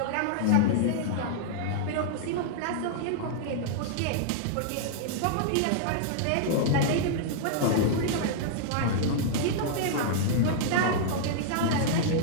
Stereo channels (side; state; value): both; different; correlation -0.01